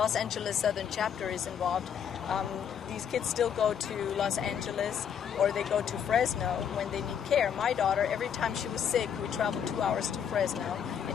Angeles Southern Chapter is involved. These kids still go to Los Angeles, or they go to Fresno when they need care. My daughter, every time she was sick, we traveled 2 hours to Fresno,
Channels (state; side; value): quieter; right; 8.2 dB